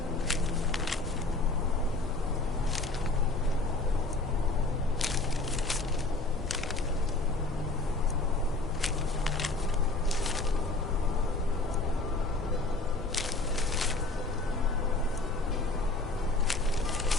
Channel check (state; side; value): quieter; right; 3.2 dB